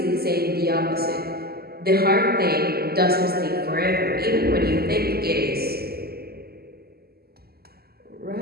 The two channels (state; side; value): late; left; 0.45 ms